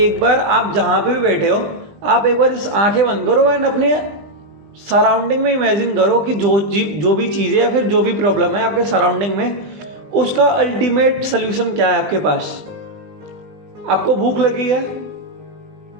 बार, आप जहाँ पे भी बैठे हो, आप एक बार इस आंखें बंद करो एंड अपने सराउंडिंग में इमेजिन करो कि जो भी चीज़ है या फिर जो भी प्रॉब्लम है आपके सराउंडिंग में, उसका अल्टीमेट सोल्यूशन क्या है आपके पास। आपको भूख लगी है,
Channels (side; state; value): left; late; 20 ms